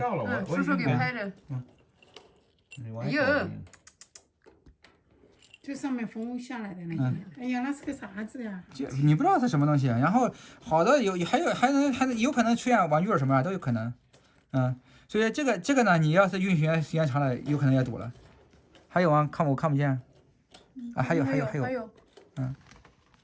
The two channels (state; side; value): identical; both; correlation 1.00